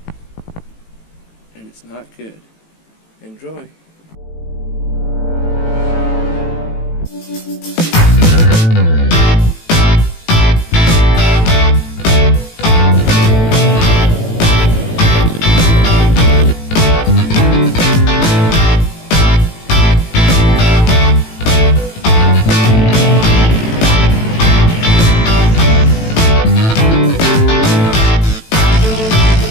and it's not good. Enjoy.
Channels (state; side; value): late; right; 18 ms